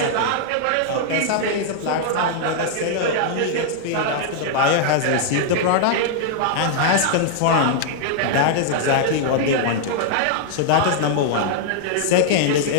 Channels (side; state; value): both; different; correlation -0.01